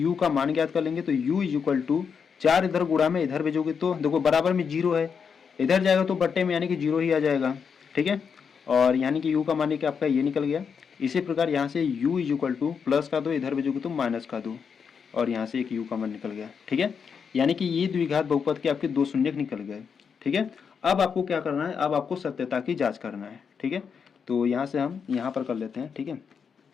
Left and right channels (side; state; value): right; quieter; 6.4 dB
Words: का मान ज्ञात कर लेंगे, तो u = 4 इधर गुणा में इधर भेजोगे तो देखो बराबर में 0 है, इधर जाएगा तो बट्टे में यानी कि 0 ही आ जाएगा, ठीक है। और यानी कि u का मान आपका ये निकल गया। इसी प्रकार यहाँ से u = प्लस का 2 इधर भेजोगे तो माइनस का 2 और यहाँ से एक u का मान निकल गया, ठीक है। यानी कि ये द्विघात बहुपद के आपके 2 शून्य निकल गए, ठीक है। अब आपको क्या करना है, अब आपको सत्यता की जांच करना है, ठीक है। तो यहाँ से हम यहाँ पर कर लेते हैं, ठीक है।